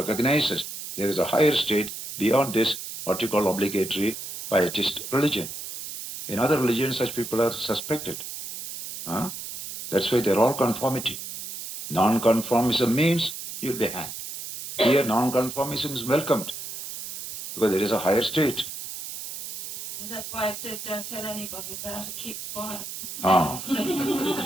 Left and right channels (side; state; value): right; noise; hiss, 9 dB below the sound